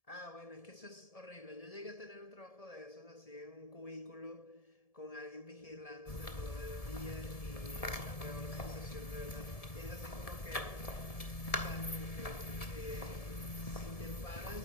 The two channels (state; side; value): late; right; 1.7 ms